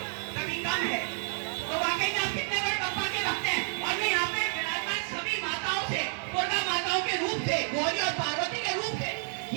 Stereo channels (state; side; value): silent; left; 58 dB below the other